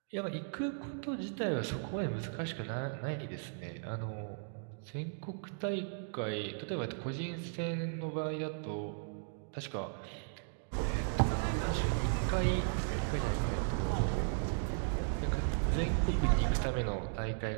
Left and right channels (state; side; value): silent; left; digital silence